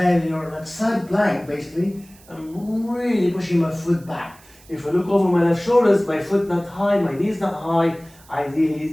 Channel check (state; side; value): noise; right; hiss, 26 dB below the sound